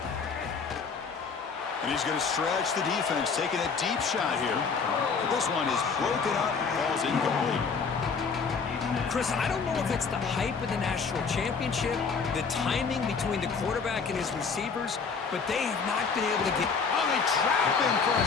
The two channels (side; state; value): right; quieter; 5.4 dB